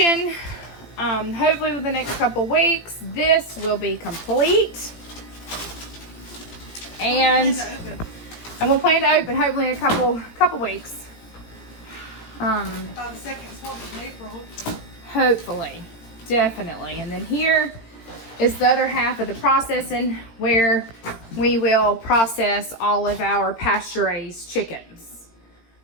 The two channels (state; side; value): late; right; 18 ms